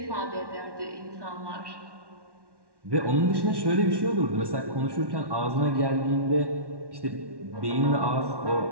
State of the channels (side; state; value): left; late; 1.1 ms